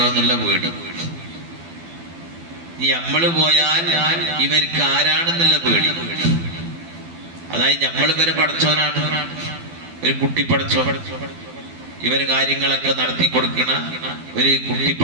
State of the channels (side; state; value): left; late; 12 ms